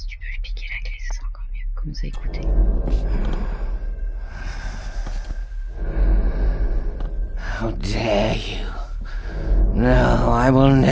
tu peux lui piquer la clé, ça sera encore mieux. Commence à écouter. How dare you? No, I will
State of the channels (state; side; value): identical; both; correlation 1.00